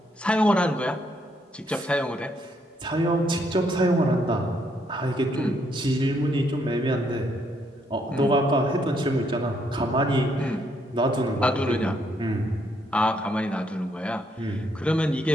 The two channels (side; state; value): both; normal; correlation 0.73